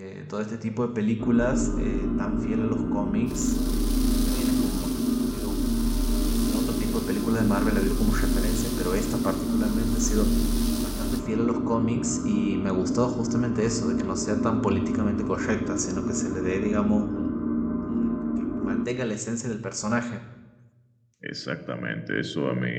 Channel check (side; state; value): both; identical; correlation 1.00